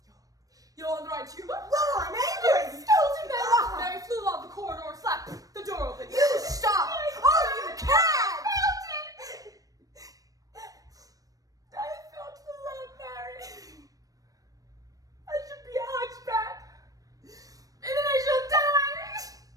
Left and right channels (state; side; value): late; left; 0.17 ms